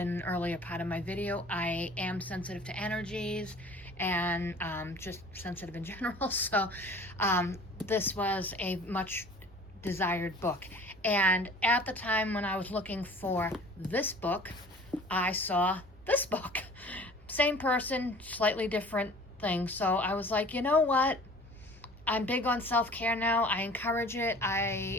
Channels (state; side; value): normal; both; correlation 0.46